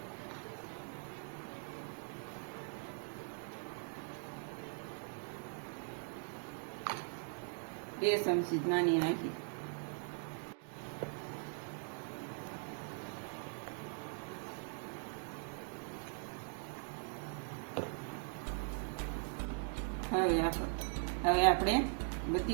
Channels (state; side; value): silent; left; 51 dB below the other